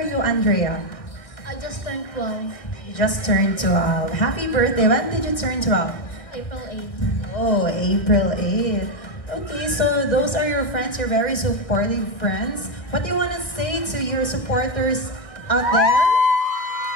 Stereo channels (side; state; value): right; late; 1.5 ms